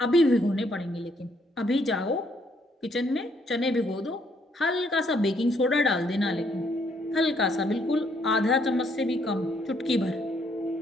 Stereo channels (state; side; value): normal; both; correlation 0.70